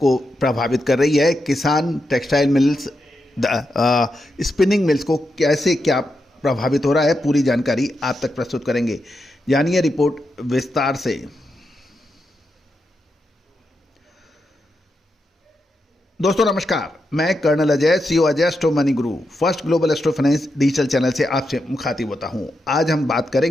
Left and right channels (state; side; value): normal; both; correlation 0.85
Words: प्रभावित कर रही है। किसान, टेक्सटाइल मिल्स, स्पिनिंग मिल्स को कैसे क्या प्रभावित हो रहा है, पूरी जानकारी आप तक प्रस्तुत करेंगे। जानिए रिपोर्ट विस्तार से। दोस्तों नमस्कार, मैं colonel Ajay CEO Ajay Astro Money Group First Global Astro Finance digital channel से आपसे मुखातिब होता हूं। आज हम बात